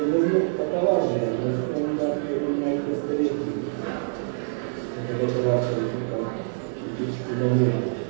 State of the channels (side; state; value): left; silent; digital silence